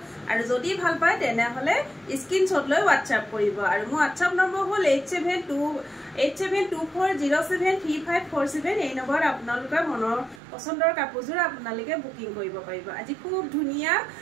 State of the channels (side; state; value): left; drops out; at 10.4 s